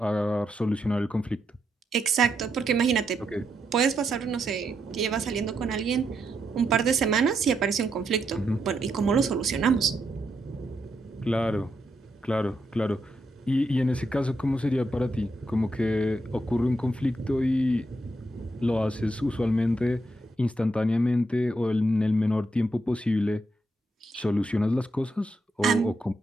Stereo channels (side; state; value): both; normal; correlation 0.81